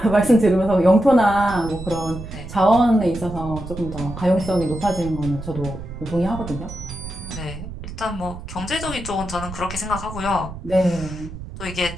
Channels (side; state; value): right; noise; rumble, 11 dB below the sound